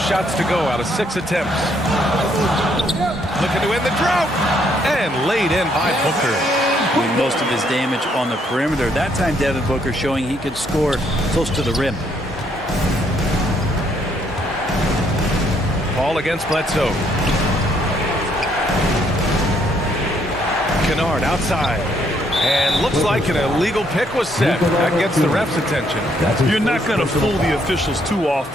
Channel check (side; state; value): both; normal; correlation 0.70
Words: to go out of 6 attempts. Looking to end the drought. And laid in by Booker. Doing most of his damage on the perimeter. That time, Devin Booker showing he could score close to the rim. Paul against Bledsoe. Kennard outside. And looks like an illegal pick was set. That gets the ref's attention. You're not going to fool the officials too